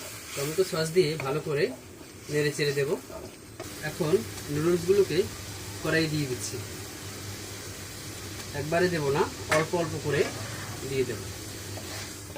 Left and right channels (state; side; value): identical; both; correlation 1.00